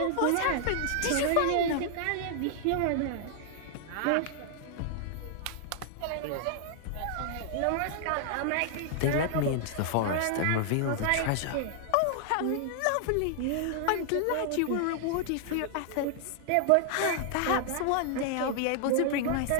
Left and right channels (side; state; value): both; different; correlation 0.00